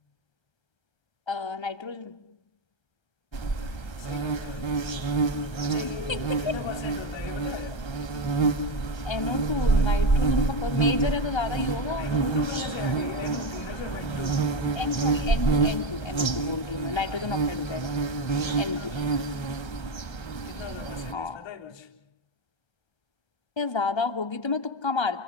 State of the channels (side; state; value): right; late; 1.3 ms